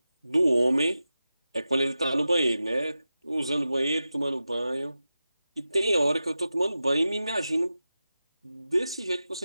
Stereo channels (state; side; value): inverted; both; correlation -0.93